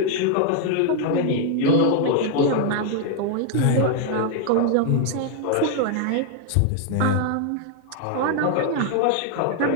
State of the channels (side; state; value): both; different; correlation 0.00